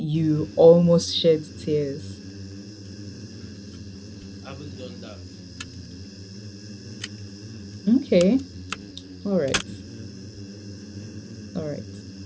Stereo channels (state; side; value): identical; both; correlation 1.00